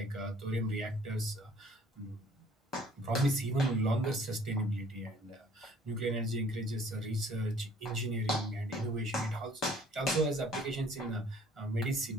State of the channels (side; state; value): both; normal; correlation 0.56